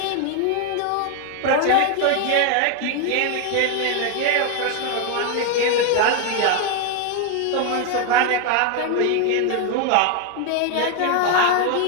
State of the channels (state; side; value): different; both; correlation 0.01